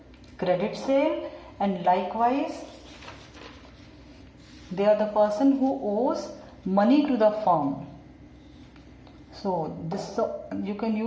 credit sale, and likewise they are the person who owes money to the firm. So this, you can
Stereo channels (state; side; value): identical; both; correlation 1.00